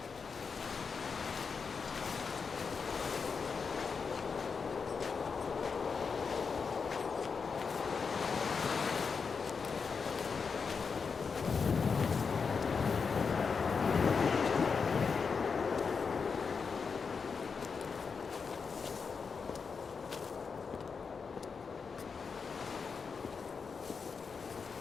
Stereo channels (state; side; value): quieter; right; 5.4 dB